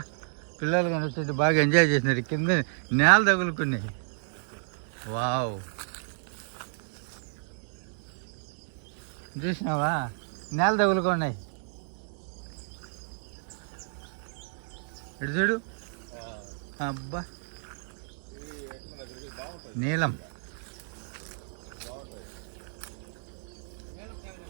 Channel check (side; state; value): left; silent; digital silence